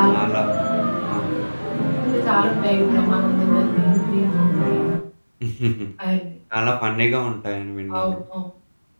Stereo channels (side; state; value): both; inverted; correlation -1.00